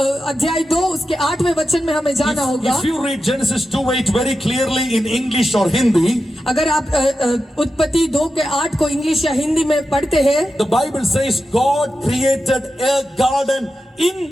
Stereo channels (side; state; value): both; normal; correlation 0.91